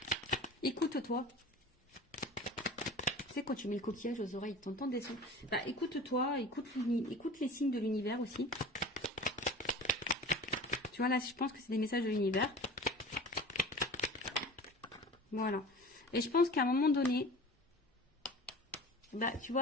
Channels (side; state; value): both; normal; correlation 0.38